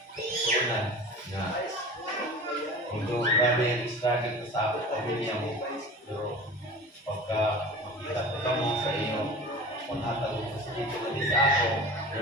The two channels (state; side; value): normal; both; correlation 0.37